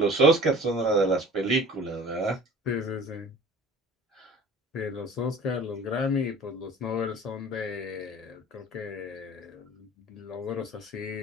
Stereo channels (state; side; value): normal; both; correlation 0.45